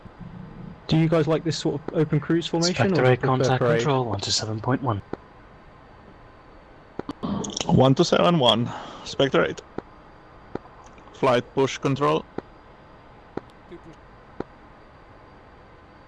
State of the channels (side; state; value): both; identical; correlation 1.00